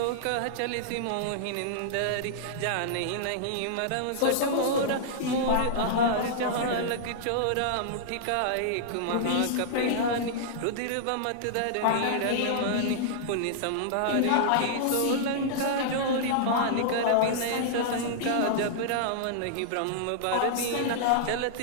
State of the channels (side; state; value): both; different; correlation -0.01